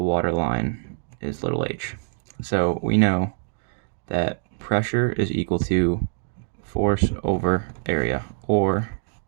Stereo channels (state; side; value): silent; left; digital silence